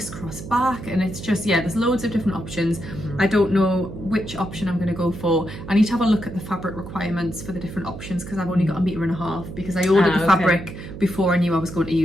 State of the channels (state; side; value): noise; right; hum, 11 dB below the sound